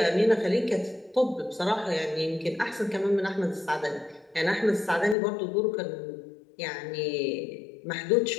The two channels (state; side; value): drops out; right; at 5.2 s